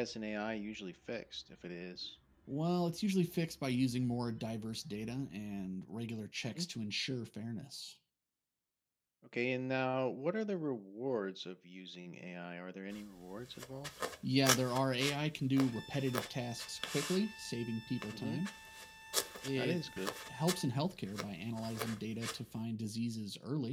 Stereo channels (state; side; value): identical; both; correlation 1.00